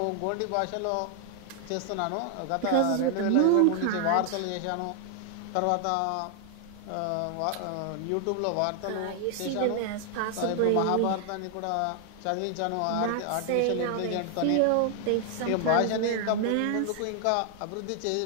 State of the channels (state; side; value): different; both; correlation 0.00